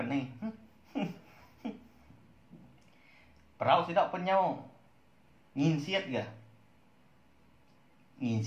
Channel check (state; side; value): identical; both; correlation 1.00